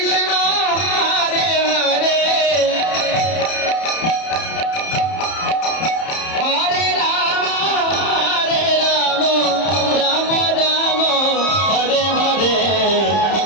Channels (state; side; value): late; right; 31 ms